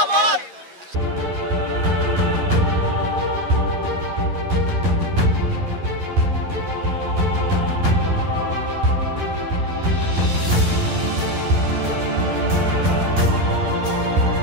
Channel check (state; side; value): late; left; 11 ms